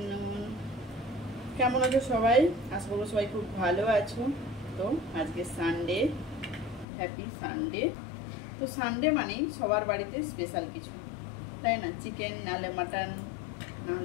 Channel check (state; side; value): drops out; right; at 6.9 s